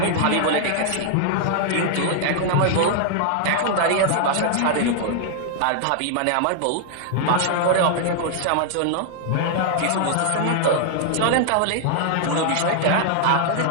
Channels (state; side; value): different; both; correlation 0.00